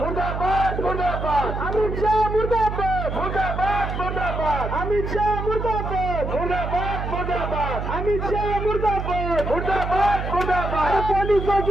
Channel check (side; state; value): right; noise; hum, 4 dB below the sound